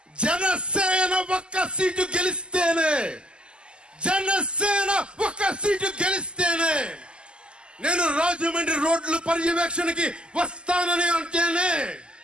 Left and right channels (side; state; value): left; late; 0.050 ms